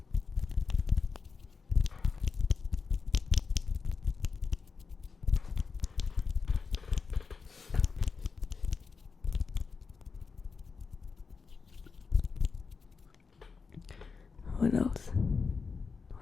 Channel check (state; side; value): quieter; right; 5.0 dB